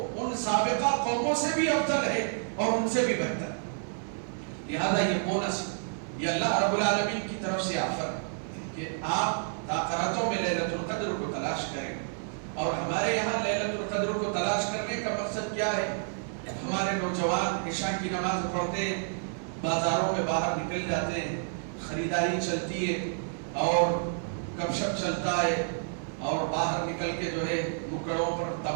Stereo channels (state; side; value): silent; left; 58 dB below the other